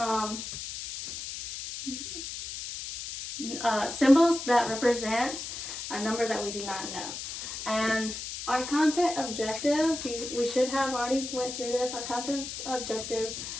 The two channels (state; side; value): noise; left; hiss, 7 dB below the sound